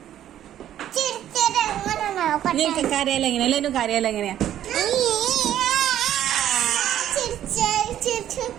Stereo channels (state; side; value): quieter; left; 11.5 dB